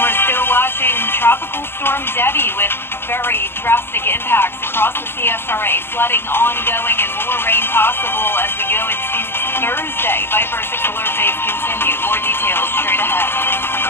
still watching Tropical Storm Debbie with very drastic impacts across the CSRA. Flooding ongoing and more rain possible as we go into Thursday. Viper 6 alert days continue. More details straight ahead.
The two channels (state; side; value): late; right; 0.11 ms